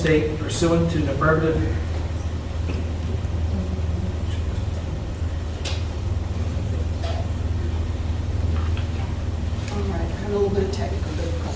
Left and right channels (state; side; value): identical; both; correlation 1.00